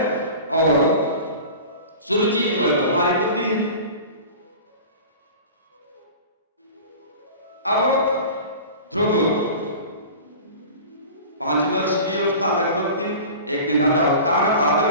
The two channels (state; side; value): inverted; both; correlation -0.37